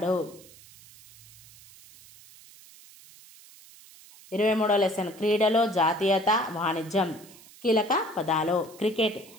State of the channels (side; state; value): right; noise; hiss, 22 dB below the sound